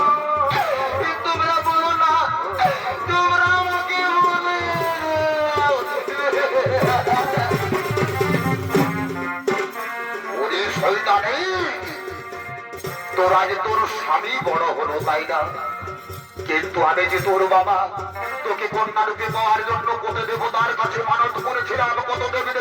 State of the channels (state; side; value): identical; both; correlation 1.00